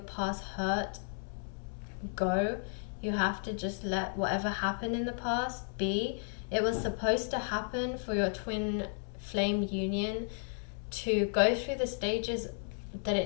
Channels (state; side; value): silent; right; 55 dB below the other